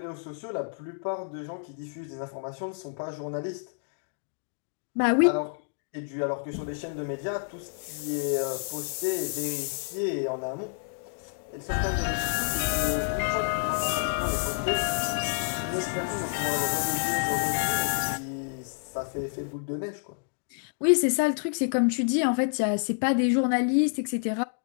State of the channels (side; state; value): right; silent; digital silence